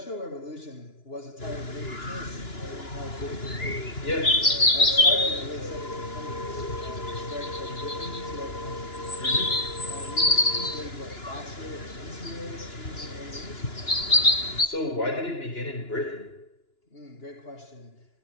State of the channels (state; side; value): late; right; 2.9 ms